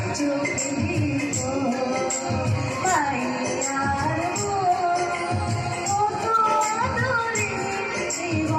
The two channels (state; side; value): identical; both; correlation 1.00